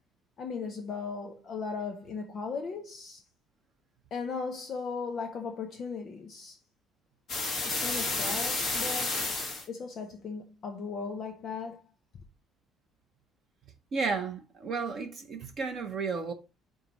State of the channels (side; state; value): both; normal; correlation 0.60